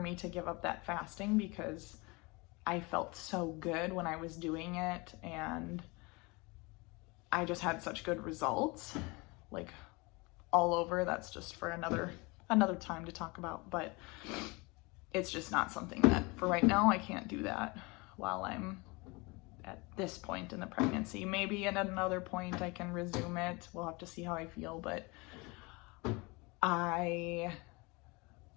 to give up that fasting because I felt so good when I was doing it, and I just had such good results, like all over. That's just for another time to talk about, but it's just not something that, for right now, I can't do that while I'm at this point in the pregnancy. Maybe at another point I can resume it. We'll have to see how I feel, but I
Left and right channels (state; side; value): quieter; right; 26.3 dB